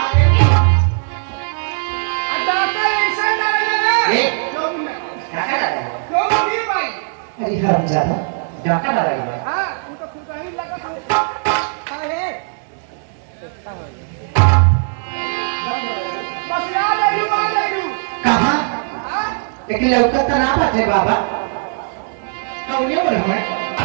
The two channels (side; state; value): left; silent; digital silence